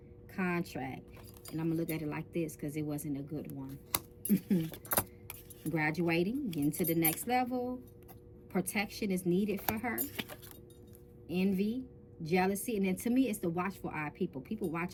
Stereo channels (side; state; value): both; identical; correlation 1.00